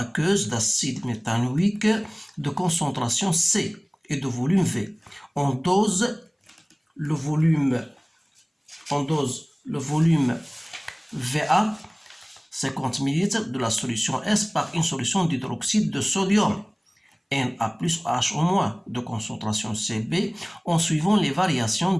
d'acide méthanoïque de concentration C et de volume V. On dose le volume VA 50 ml de la solution S par une solution d'hydroxyde de sodium Na plus H de concentration Cb en suivant les variations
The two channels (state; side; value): identical; both; correlation 1.00